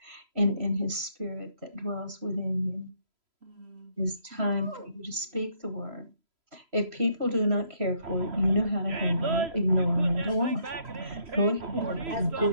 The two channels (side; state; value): left; late; 3.0 ms